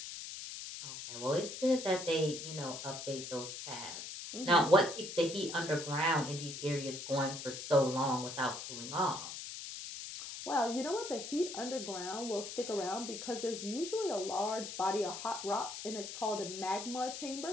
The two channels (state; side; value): noise; left; hiss, 8 dB below the sound